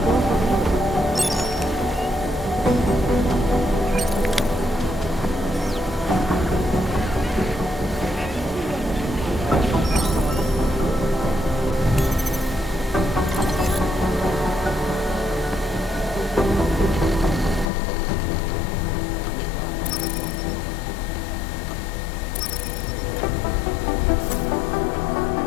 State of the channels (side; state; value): right; drops out; at 17.7 s